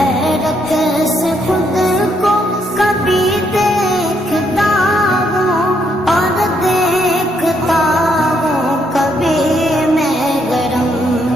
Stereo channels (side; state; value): both; normal; correlation 0.74